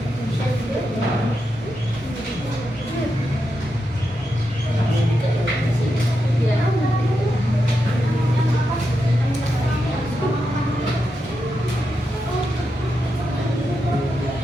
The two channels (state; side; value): normal; both; correlation 0.86